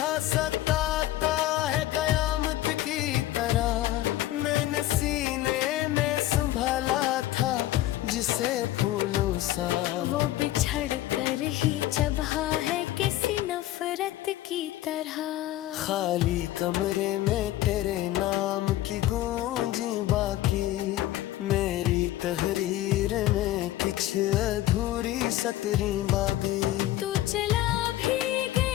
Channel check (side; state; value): right; quieter; 14.9 dB